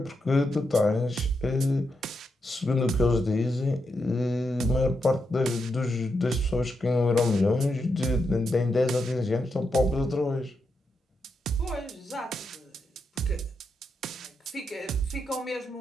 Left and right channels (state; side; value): normal; both; correlation 0.84